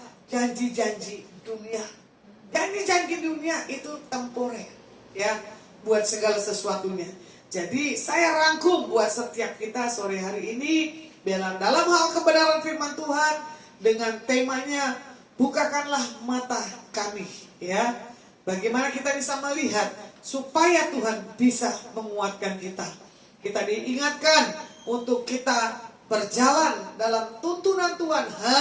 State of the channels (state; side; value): identical; both; correlation 1.00